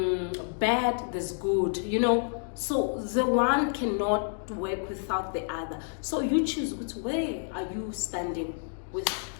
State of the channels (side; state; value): right; silent; digital silence